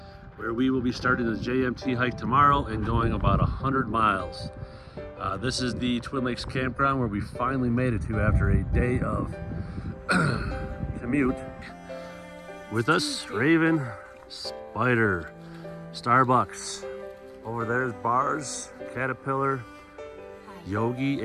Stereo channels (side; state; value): both; identical; correlation 1.00